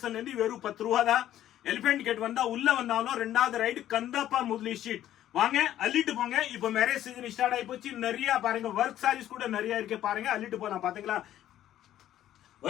இருந்து வெறும் 10 ரூபா தான். எலிபென்ட் கேட் வந்தா உள்ள வந்தாலும் 2வது ரைடு கந்தப்பா முதலி ஸ்ட்ரீட். வாங்க, அள்ளிட்டு போங்க. இப்ப மேரேஜ் சீசன் ஸ்டார்ட் ஆகி போச்சு. நிறைய பாருங்க, ஒர்க் சாரீஸ் கூட நிறைய இருக்கு. பாருங்க, அள்ளிட்டு போலாம். பாத்தீங்களா,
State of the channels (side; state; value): right; quieter; 12.3 dB